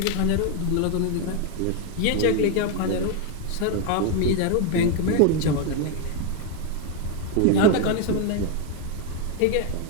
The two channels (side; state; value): both; different; correlation 0.01